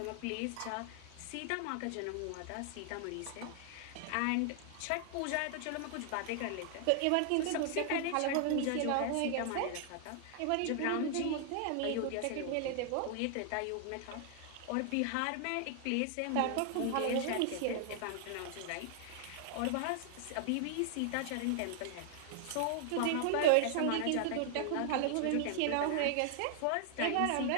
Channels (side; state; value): both; different; correlation 0.00